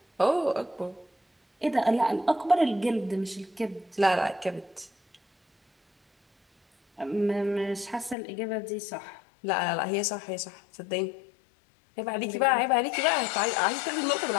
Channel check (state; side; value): drops out; right; at 8.2 s